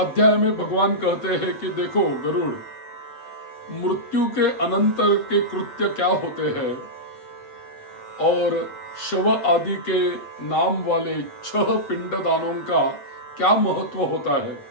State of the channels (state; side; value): late; right; 7.9 ms